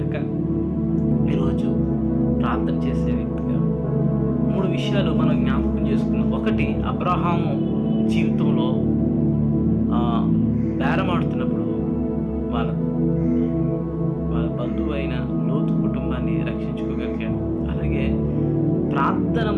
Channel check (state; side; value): identical; both; correlation 1.00